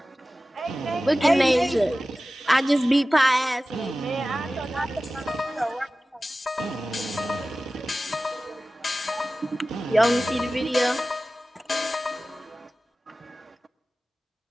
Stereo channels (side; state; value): both; normal; correlation 0.96